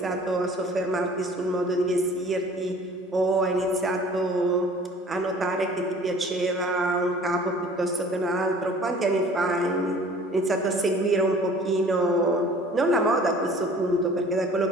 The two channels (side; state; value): both; normal; correlation 0.49